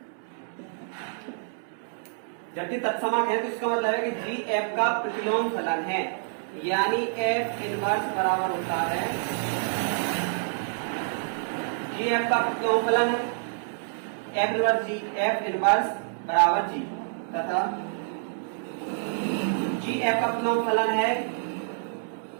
जबकि तत्समक है तो इसका मतलब है कि जी एफ का प्रतिलोम फलन है, यानी एफ इनवर्स बराबर होता है जी एफ का प्रतिलोम फलन है एफ इनवर्स जी, एफ इनवर्स बराबर जी, तथा जी एफ का प्रतिलोम फलन है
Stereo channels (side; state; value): left; silent; 60 dB below the other